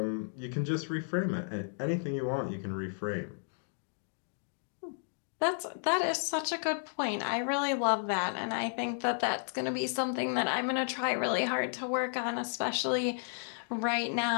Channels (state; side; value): silent; right; digital silence